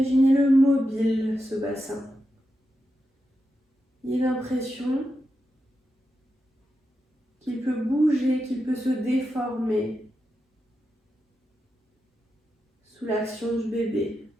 mobile, ce bassin. Il a l'impression qu'il peut bouger, qu'il peut se déformer sous l'action du bébé,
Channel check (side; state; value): both; normal; correlation 0.88